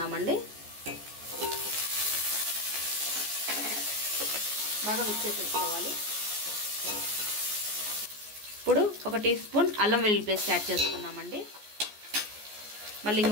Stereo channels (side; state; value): left; late; 14 ms